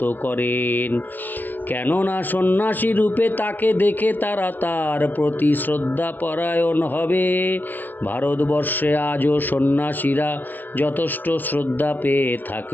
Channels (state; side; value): late; right; 0.088 ms